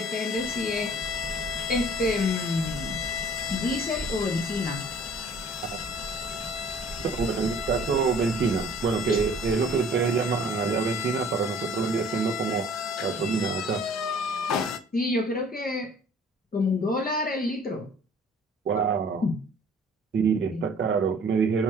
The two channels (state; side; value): normal; both; correlation 0.51